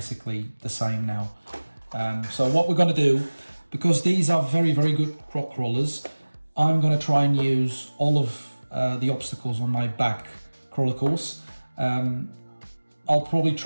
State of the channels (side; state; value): both; inverted; correlation -1.00